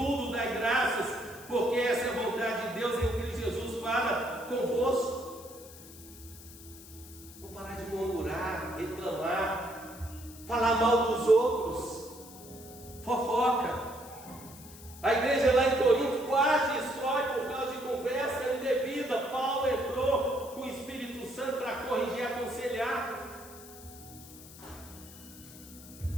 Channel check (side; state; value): left; noise; hiss, 18 dB below the sound